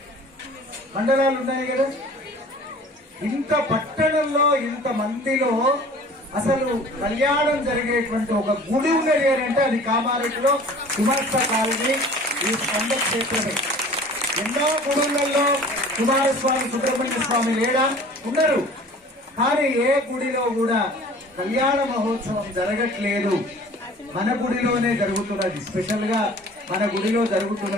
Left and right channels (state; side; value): normal; both; correlation 0.46